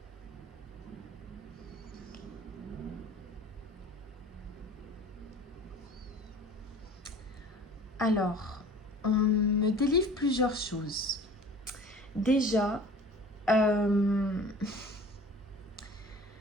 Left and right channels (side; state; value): both; normal; correlation 0.44